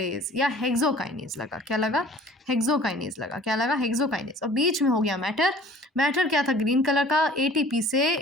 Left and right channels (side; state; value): both; normal; correlation 0.49